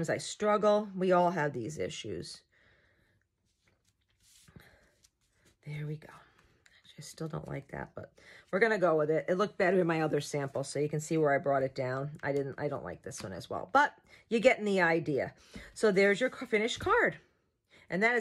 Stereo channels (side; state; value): both; identical; correlation 1.00